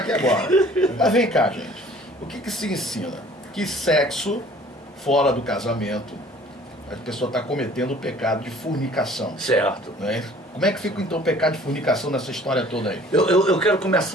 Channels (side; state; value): both; normal; correlation 0.52